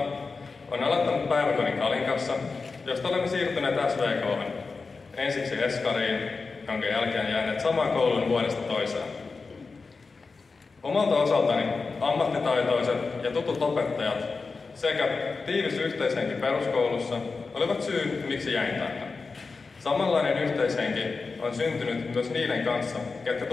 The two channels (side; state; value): right; quieter; 4.3 dB